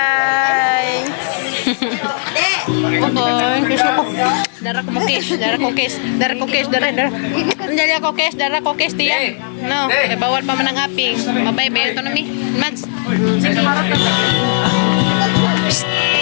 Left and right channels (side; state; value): right; silent; digital silence